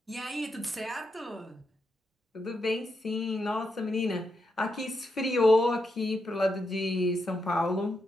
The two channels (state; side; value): normal; both; correlation 0.84